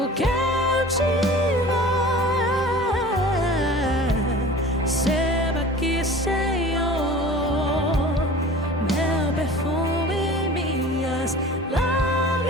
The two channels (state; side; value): normal; both; correlation 0.42